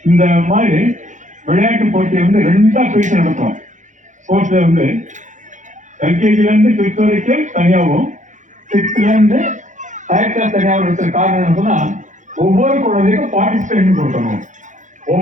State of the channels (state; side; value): late; left; 0.36 ms